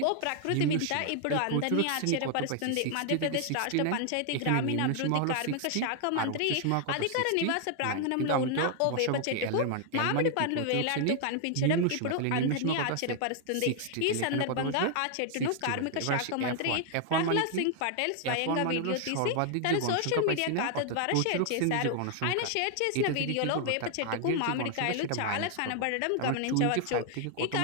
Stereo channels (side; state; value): both; different; correlation 0.00